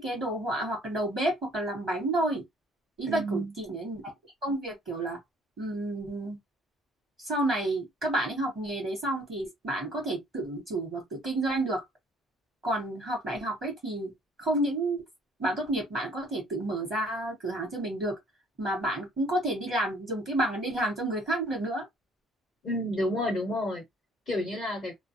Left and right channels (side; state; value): both; normal; correlation 0.58